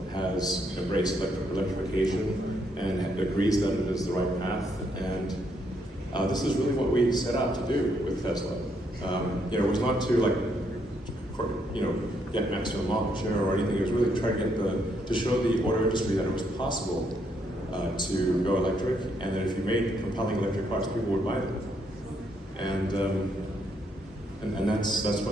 has embraced electrification and agrees that it is the right path. And this is really what we set out to do with Tesla. It was not to get maximum market share or anything. It was really to try to show the auto industry that it was possible to go electric, and that if you made compelling electric cars, people would buy them. And that's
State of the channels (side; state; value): both; normal; correlation 0.74